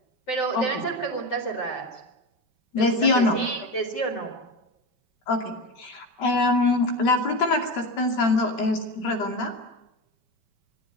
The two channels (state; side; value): late; right; 5.2 ms